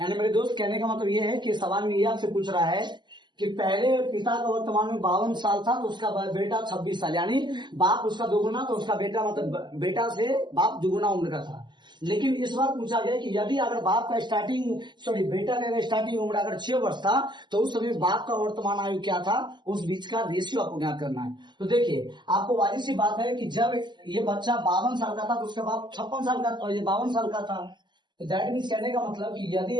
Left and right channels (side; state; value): left; late; 0.21 ms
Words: यानी मेरे दोस्त कहने का मतलब ये है कि सवाल में ये आपसे पूछ रहा है कि पहले पिता का वर्तमान में 52 साल था तो उसका बेटा 26 साल, यानी बाप उसका दोगुना तो उसका बेटा मतलब बेटा से बाप दुगुना उम्र का था। लेकिन इस बार पूछा गया कि यदि अगर बाप का बेटा का स्टार्टिंग उम्र अगर 6 वर्ष था तो उस समय बाप का वर्तमान आयु क्या था, उस बीच का रेशियो आपको ज्ञात करना है। तो देखिए आपको वाली सी बात है कि जब ये बच्चा 52 साल का था तो उसका बाप 56 साल का और ये 52 साल का था। तो दैट मीन्स कहने का मतलब कि यदि